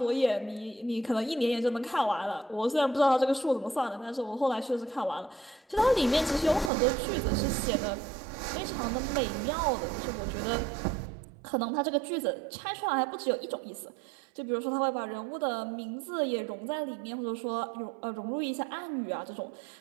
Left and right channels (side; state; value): left; drops out; at 6.7 s